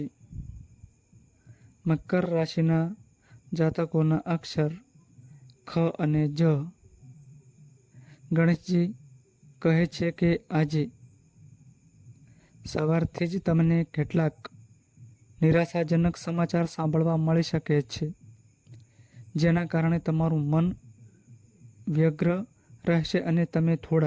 મકર રાશિના જાતકોના અક્ષર ખ અને જ. ગણેશજી કહે છે કે આજે સવારથી જ તમને કેટલાક નિરાશાજનક સમાચાર સાંભળવા મળી શકે છે, જેના કારણે તમારું મન વ્યગ્ર રહેશે અને તમે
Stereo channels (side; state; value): both; identical; correlation 1.00